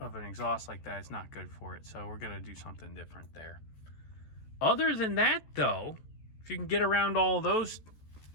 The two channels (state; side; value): late; right; 14 ms